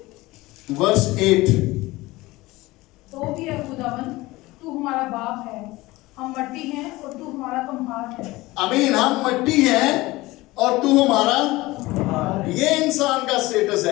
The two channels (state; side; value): quieter; right; 19.9 dB